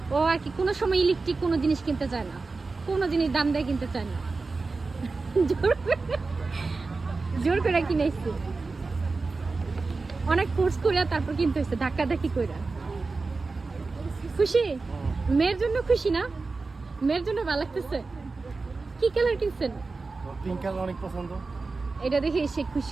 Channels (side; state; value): left; quieter; 3.9 dB